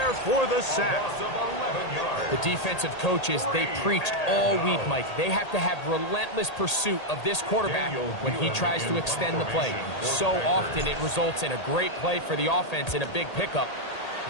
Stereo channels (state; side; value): late; right; 1.8 ms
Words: for the sack. The defensive coaches, they preached all week, Mike. They have to have relentless pursuit of this quarterback when he tries to extend the play. So often it results in a great play for the offense and a big pickup.